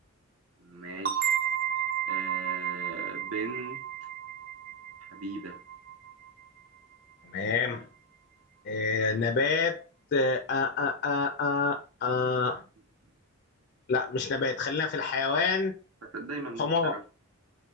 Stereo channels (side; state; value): both; normal; correlation -0.01